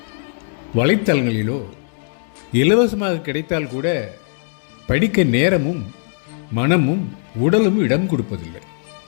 வலைத்தளங்களிலோ இலவசமாக கிடைத்தால் கூட படிக்க நேரமும் மனமும் உடலும் இடம் கொடுப்பதில்லை.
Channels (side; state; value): right; silent; digital silence